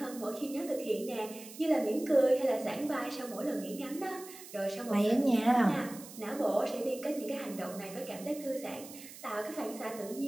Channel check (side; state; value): right; noise; hiss, 15 dB below the sound